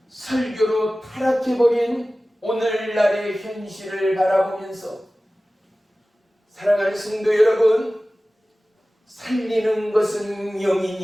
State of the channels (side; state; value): both; normal; correlation 0.97